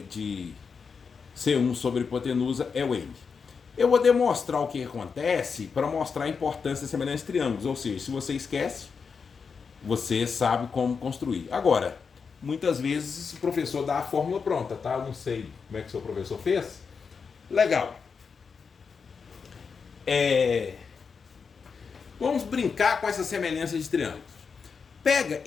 C1 sobre a hipotenusa é o N. Eu vou demonstrar o que acontece para mostrar a importância da semelhança de triângulos. Ou seja, se você esquece, você sabe como construir. Agora, muitas vezes o professor dá a fórmula pronta, tá? Eu não sei como é que o seu professor fez. Legal. Vamos brincar com essa semelhança de triângulos. Pega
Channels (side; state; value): right; quieter; 5.6 dB